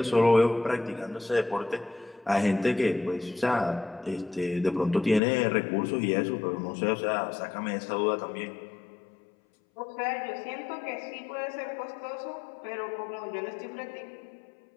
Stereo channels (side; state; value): right; drops out; at 5.2 s